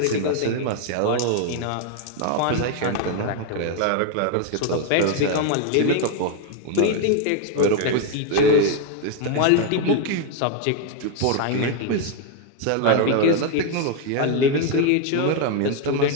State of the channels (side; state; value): both; different; correlation 0.01